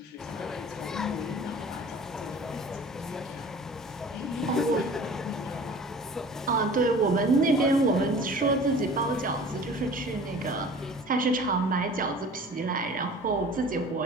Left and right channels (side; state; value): both; normal; correlation 0.44